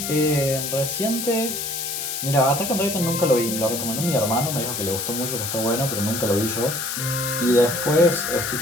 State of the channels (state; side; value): noise; left; hiss, 4 dB below the sound